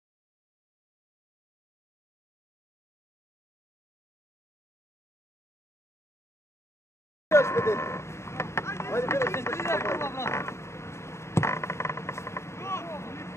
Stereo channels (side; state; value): right; late; 0.13 ms